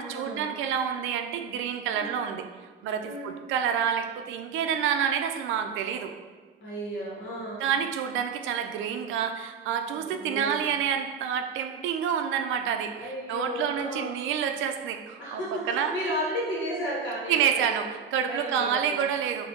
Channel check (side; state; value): left; quieter; 6.5 dB